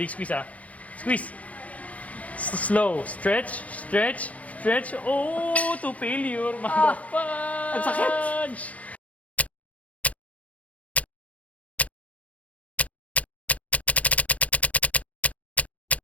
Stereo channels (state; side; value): late; right; 0.068 ms